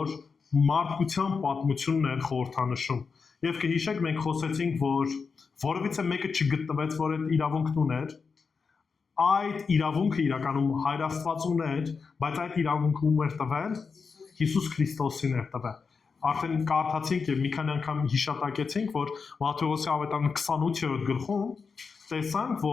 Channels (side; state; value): right; quieter; 5.2 dB